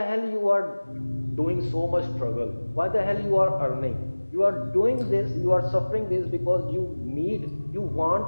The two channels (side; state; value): both; inverted; correlation -1.00